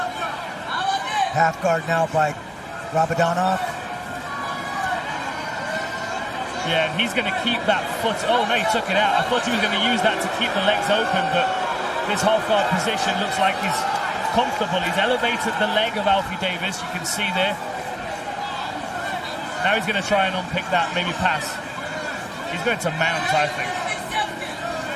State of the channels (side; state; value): both; identical; correlation 1.00